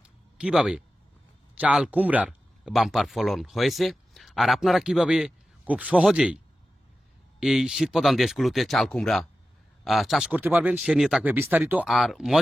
কিভাবে চাল কুমড়ার বাম্পার ফলন হয়েছে, আর আপনারা কিভাবে খুব সহজেই এই শীতপ্রধান দেশগুলোতে চাল কুমড়া চাষ করতে পারবেন সে নিয়ে থাকবে বিস্তারিত। আর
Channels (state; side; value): normal; both; correlation 0.93